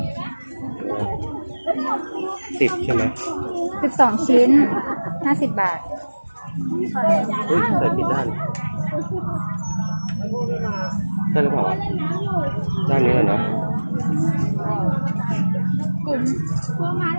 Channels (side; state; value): both; inverted; correlation -1.00